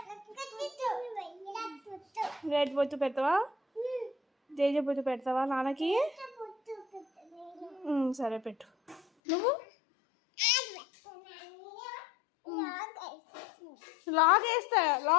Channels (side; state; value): right; drops out; at 9.0 s